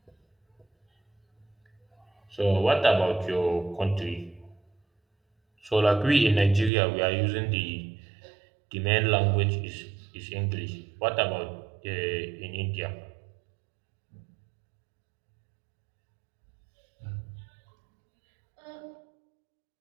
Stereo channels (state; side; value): drops out; left; at 6.7 s